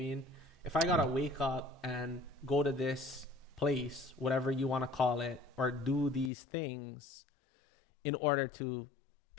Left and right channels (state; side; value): drops out; right; at 6.3 s